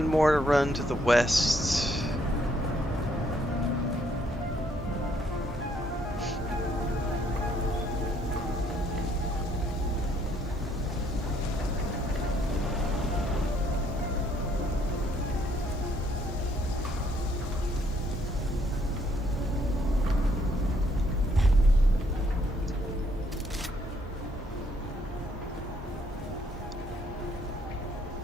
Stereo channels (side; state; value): both; normal; correlation 0.69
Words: more to run to the west.